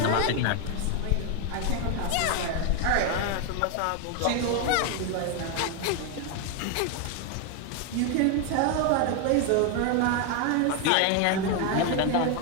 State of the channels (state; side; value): different; both; correlation 0.01